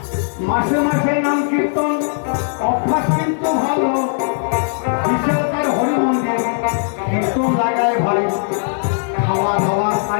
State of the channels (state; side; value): silent; right; digital silence